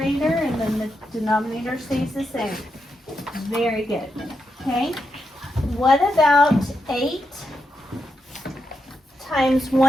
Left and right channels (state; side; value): normal; both; correlation 0.84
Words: and then the denominator stays the same. Very good. Okay. What about 8 times